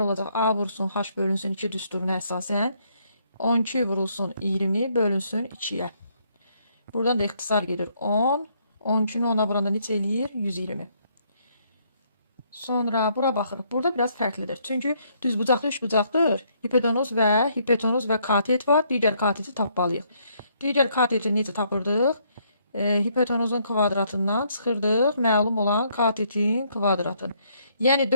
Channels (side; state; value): both; inverted; correlation -0.70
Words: olacaq. A vurulsun H bölünsün 2 düsturuna əsasən 12 vurulsun 20 bölünsün 2-yə. Buradan da ixtisar gedir 10. 12-ni 10-a vuranda neçə eləyir? 120. Sonra bura baxırıq. Burada biraz fərqlidir. Çünki düzbucaqlı üçbucaqdır. Hipotenuz və katet var. Digər kateti tapmalıyıq. Digər kateti necə tapırdıq? Hipotenuzun kvadratından çıxırdıq. Məlum olan katetin kvadratını. Yəni